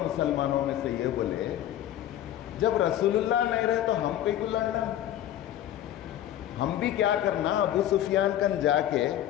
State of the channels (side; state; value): right; quieter; 12.1 dB